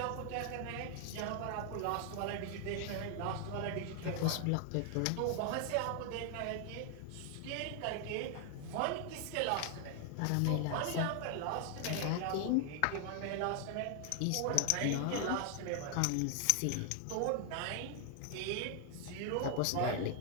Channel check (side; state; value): both; different; correlation 0.00